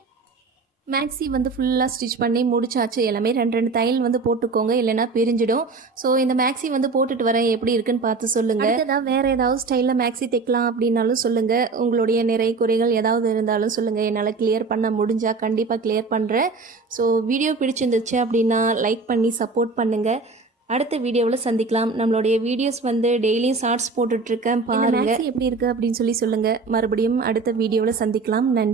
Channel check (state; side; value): quieter; left; 4.1 dB